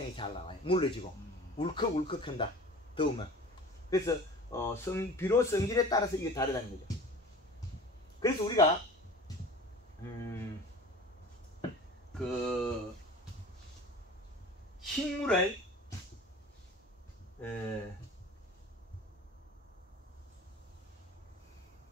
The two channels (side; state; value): both; normal; correlation 0.41